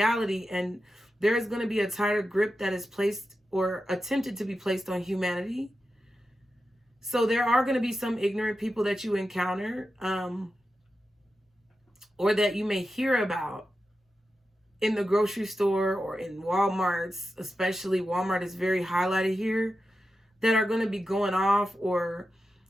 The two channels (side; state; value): both; normal; correlation 0.90